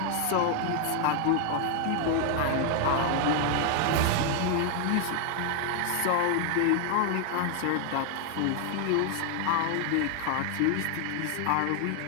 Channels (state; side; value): different; both; correlation 0.00